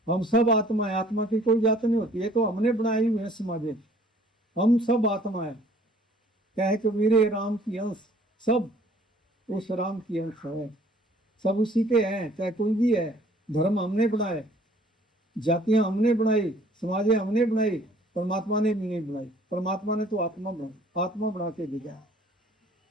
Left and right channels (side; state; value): both; normal; correlation 0.56